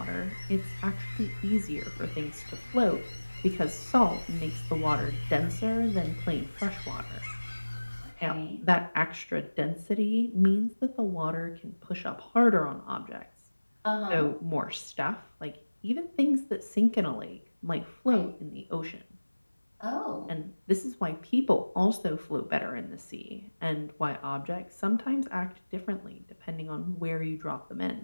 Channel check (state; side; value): inverted; both; correlation -1.00